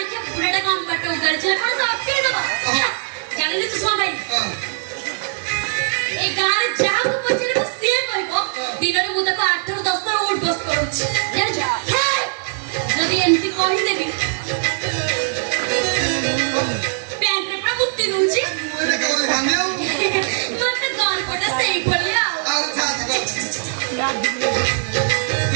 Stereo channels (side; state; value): left; silent; 65 dB below the other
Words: के बुढ़ाटा काम बाटो उगार छला कोन सब अटके दबा जानि चुष्मा भाई ए गार जाऊ को पछरे को से कहबो दिनरे मु तको 8 ରୁ 10 ଥର उठ बस करूछि जान जा जदी एमती कहि देबी पैंट रे पूरा बुत्ती दूछि ଏଇଟା କେଉଁଠି ଭାଙ୍ଗି ଆଉ मत गाल पटा सही भलिया ଆଉ ଛାଡ଼ି